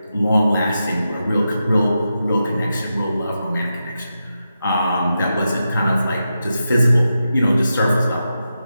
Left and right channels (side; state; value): both; inverted; correlation -0.88